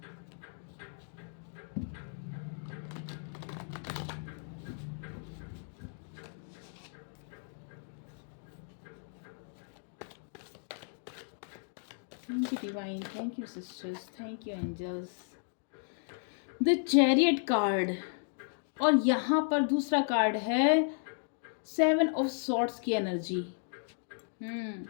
Thank you divine, thank you sisters, thank you angels. The chariot card और यहाँ पर दूसरा कार्ड है सेवन ऑफ सॉर्ड्स की एनर्जी। हम्म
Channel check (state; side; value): silent; right; digital silence